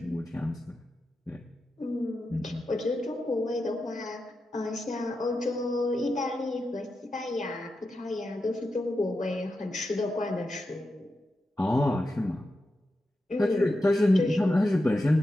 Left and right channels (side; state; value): both; normal; correlation 0.89